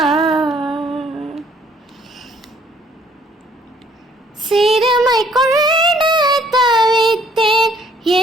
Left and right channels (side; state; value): both; normal; correlation 0.61